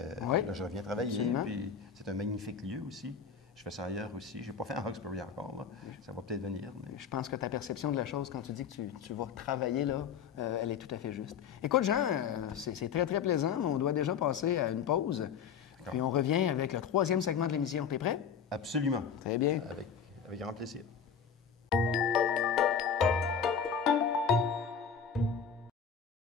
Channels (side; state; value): right; quieter; 6.9 dB